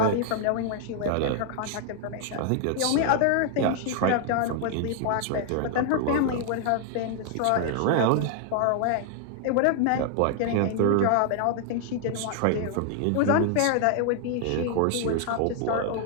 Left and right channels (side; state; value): both; different; correlation 0.00